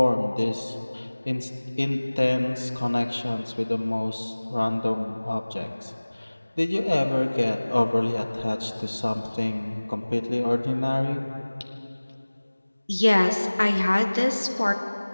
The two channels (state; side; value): inverted; both; correlation -1.00